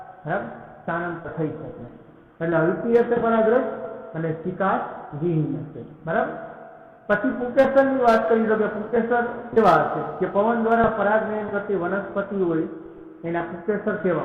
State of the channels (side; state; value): both; identical; correlation 1.00